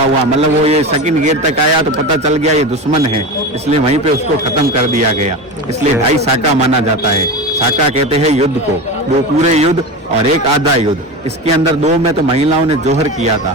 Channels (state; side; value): normal; both; correlation 0.25